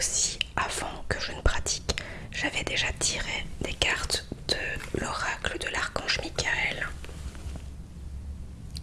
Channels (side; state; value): both; identical; correlation 1.00